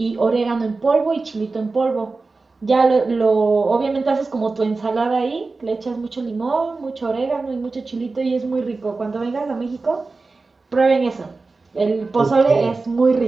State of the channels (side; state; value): left; quieter; 3.8 dB